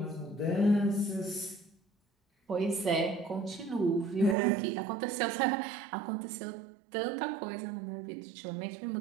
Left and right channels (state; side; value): drops out; left; at 4.4 s